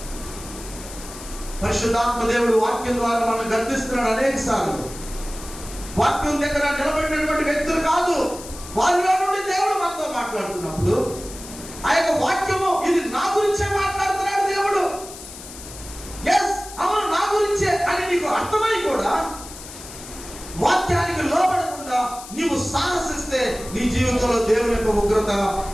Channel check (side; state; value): left; noise; hiss, 14 dB below the sound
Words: పరిశుద్ధాత్మ దేవుడు వాక్యం ద్వారా మనం గర్దిస్తున్నాడు అనేక సార్లు. వాక్యం దగ్గర నిలబడినటువంటి వ్యక్తులు కాదు, వారిలో నుండి దేవుడు మనతో మాట్లాడుతున్నప్పుడు ఆ యొక్క వాక్యము ఇది నా గురించే మాట్లాడుతున్నాడు దేవుడు. ఎస్, అవును, నా గురించే అని నీకు అర్థమై కూడా వాక్యానికి లోబడకుండా నీవు సాహసిస్తే నీ జీవితంలో దేవుని యొక్క ఉగ్రత